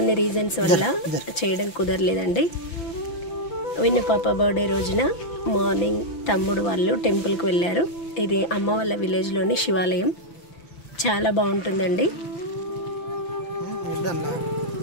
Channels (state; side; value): late; right; 5.9 ms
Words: రీజన్స్ వల్ల చేయడం కుదరలేదండి. విన్ను పాప బర్త్డే రోజున మార్నింగ్ తమ్ముడు వాళ్ళు టెంపుల్కి వెళ్ళారు. ఇది అమ్మ వాళ్ళ విలేజ్లోని శివాలయం. చాలా బాగుంటుందండి.